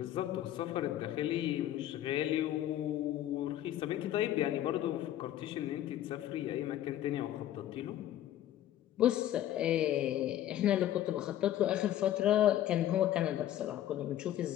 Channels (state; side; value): quieter; right; 12.4 dB